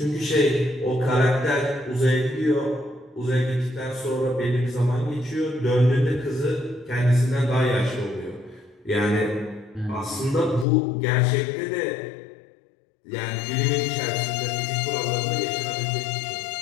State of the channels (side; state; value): right; drops out; at 10.7 s